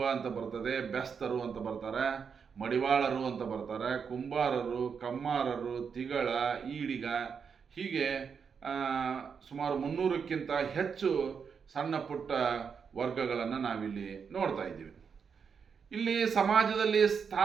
ಅಂತ ಬರ್ತದೆ, ಬೆಸ್ತರು ಅಂತ ಬರ್ತಾರೆ, ಮಡಿವಾಳರು ಅಂತ ಬರ್ತಾರೆ, ಕುಂಬಾರರು, ಕಮ್ಮಾರರು, ತಿಗಳ, ಈಡಿಗ, ಹೀಗೆ ಸುಮಾರು 300ಕ್ಕಿಂತ ಹೆಚ್ಚು ಸಣ್ಣ ಪುಟ್ಟ ವರ್ಗಗಳನ್ನು ನಾವಿಲ್ಲಿ ನೋಡ್ತಾ ಇದ್ದೀವಿ. ಇಲ್ಲಿ ಸಮಾಜದಲ್ಲಿ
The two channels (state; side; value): quieter; left; 6.4 dB